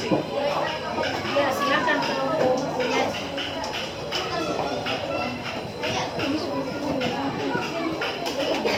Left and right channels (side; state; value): both; identical; correlation 1.00